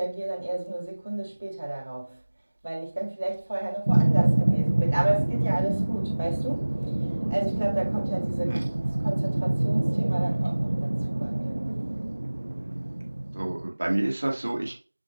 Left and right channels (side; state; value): both; inverted; correlation -1.00